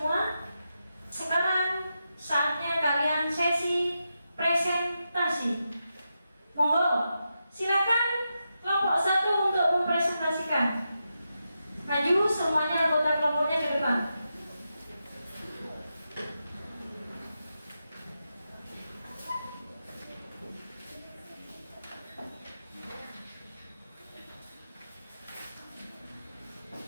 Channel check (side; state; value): both; inverted; correlation -0.88